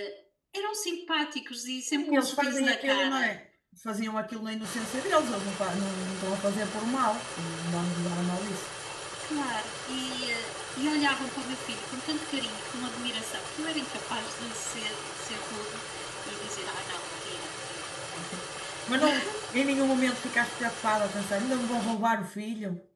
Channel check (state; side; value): identical; both; correlation 1.00